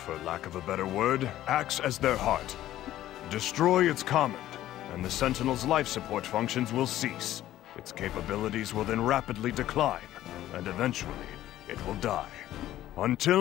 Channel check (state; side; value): quieter; right; 13.6 dB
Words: for lack of a better word, acts as their heart. Destroy its Command, and the Sentinel's life support functions will cease. Its capabilities will then rapidly decline, and eventually, it will die.